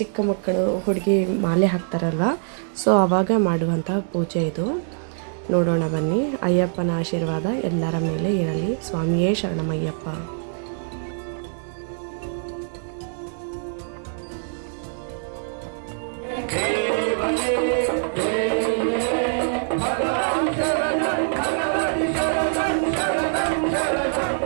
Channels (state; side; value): silent; left; digital silence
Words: ಚಿಕ್ಕ ಮಕ್ಕಳು ಹುಡುಗಿ ಮಾಲೆ ಹಾಕ್ತಾರಲ್ವ, ಸೊ ಆವಾಗ ಮಾಡುವಂತಹ ಪೂಜೆ ಇದು. ನೋಡೋಣ ಬನ್ನಿ. ಅಯ್ಯಪ್ಪನ ಆಶೀರ್ವಾದ ಎಲ್ಲರ ಮೇಲೆ ಇರಲಿ. ಸ್ವಾಮಿಯೇ ಶರಣಮಯ್ಯಪ್ಪ.